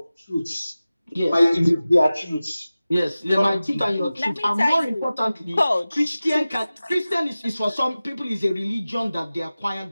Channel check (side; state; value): both; inverted; correlation -0.97